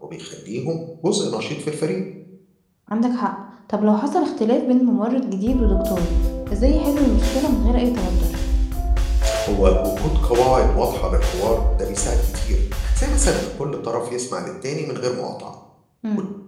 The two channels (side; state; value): both; identical; correlation 1.00